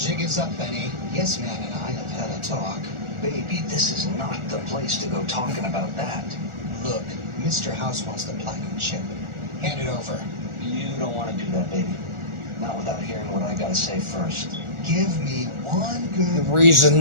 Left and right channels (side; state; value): left; late; 1.4 ms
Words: is up, Benny. Yes, Man and I have had a talk. Baby, this is not the place to go talking about that. Look, Mr. House wants the platinum chip. Hand it over. You don't want to do that, baby. Not without hearing what I gotta say first. Give me one good